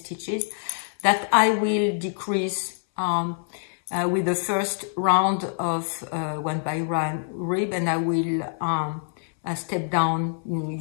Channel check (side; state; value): right; silent; 61 dB below the other